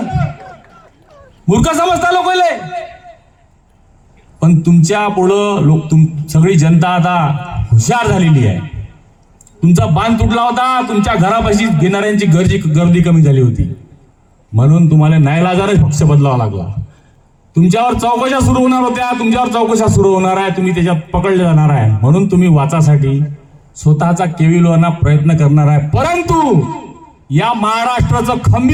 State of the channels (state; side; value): identical; both; correlation 1.00